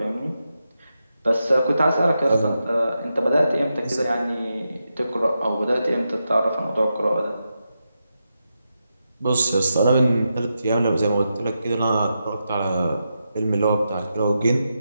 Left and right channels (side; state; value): both; inverted; correlation -0.87